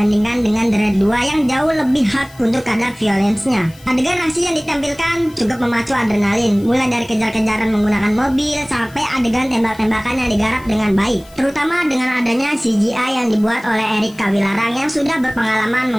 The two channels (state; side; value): noise; left; hiss, 25 dB below the sound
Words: dengan The Raid 2 yang jauh lebih hard untuk kadar violence-nya. Adegan aksi yang ditampilkan cukup memacu adrenalin, mulai dari kejar-kejaran menggunakan mobil sampai adegan tembak-tembakan yang digarap dengan baik, terutama dengan adanya CGI yang dibuat oleh Erik Kawilarang yang sudah berpengalaman